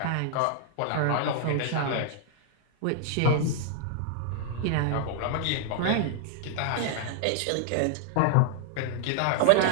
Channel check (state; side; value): different; both; correlation 0.00